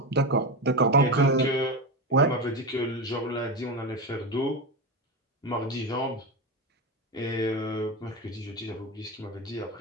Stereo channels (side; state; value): both; normal; correlation 0.17